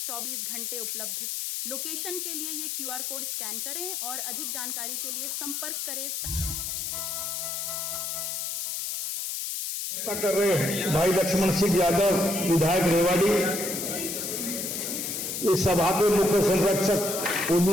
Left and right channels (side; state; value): left; noise; hiss, 3 dB below the sound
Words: 24 घंटे उपलब्ध। लोकेशन के लिए ये QR कोड स्कैन करें और अधिक जानकारी के लिए संपर्क करें। कर रहे भाई लक्ष्मण सिंह यादव, विधायक रेवाड़ी, इस सभा के मुख्य संरक्षक